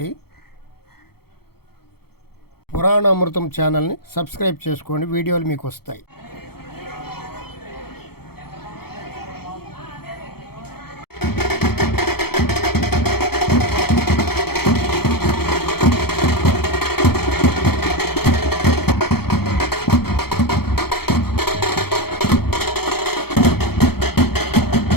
పురాణ అమృతం ఛానల్ని సబ్స్క్రైబ్ చేసుకోండి, వీడియోలు మీకు వస్తాయి.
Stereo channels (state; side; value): late; right; 0.96 ms